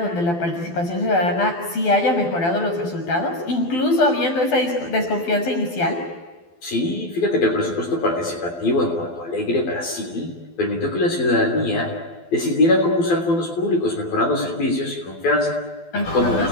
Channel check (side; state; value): right; late; 12 ms